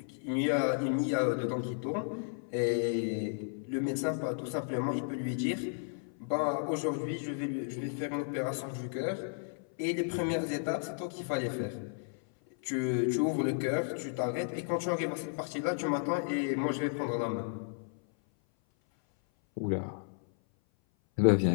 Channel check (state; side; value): silent; right; 56 dB below the other